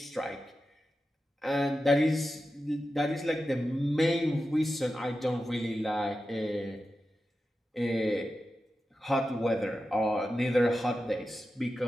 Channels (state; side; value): normal; both; correlation 0.91